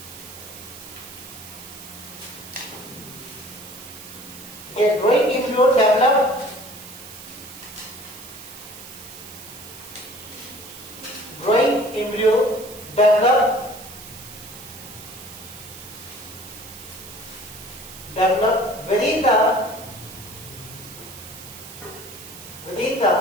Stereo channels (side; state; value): right; noise; hiss, 15 dB below the sound